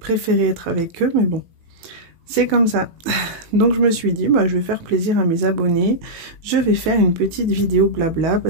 être avec eux, mais bon, c'est comme ça. Donc je me suis dit, bah, je vais faire plaisir à mes abonnés, je vais faire une petite vidéo blabla,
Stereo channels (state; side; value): late; left; 18 ms